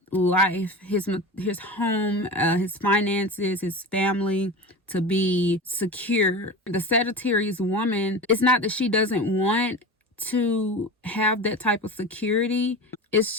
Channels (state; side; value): normal; both; correlation 0.29